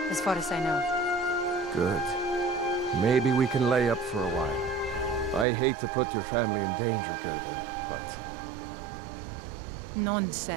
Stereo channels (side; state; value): left; drops out; at 5.5 s